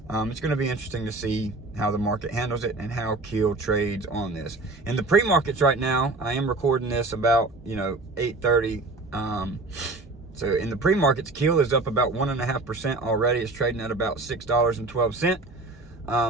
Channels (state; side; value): quieter; left; 3.1 dB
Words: It's going to be interesting to see how the market handles it and how Keel trades on this. In the pre-markets right now, I am recording this about 8:30. So in the pre-markets, Keel is up about 1.5% already. It's trading at about